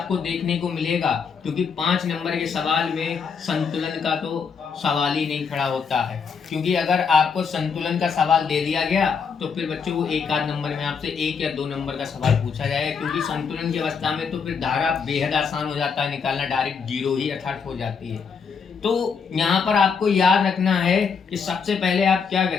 देखने को मिलेगा, क्योंकि 5 नंबर के सवाल में संतुलन का तो सवाल ही नहीं खड़ा होता है। क्योंकि अगर आपको संतुलन का सवाल दे दिया गया तो फिर बच्चों को 1 नंबर में आपसे 1 या 2 नंबर का सवाल पूछा जाएगा, क्योंकि संतुलन की अवस्था में तो फिर धारा बेहद आसान हो जाता है निकालना, डायरेक्ट 0 ही अर्थात हो जाती है। तो यहाँ पर आपको याद रखना है कि सबसे पहले आप क्या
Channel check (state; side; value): quieter; right; 6.0 dB